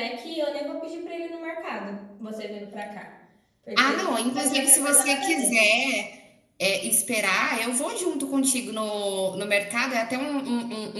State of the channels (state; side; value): identical; both; correlation 1.00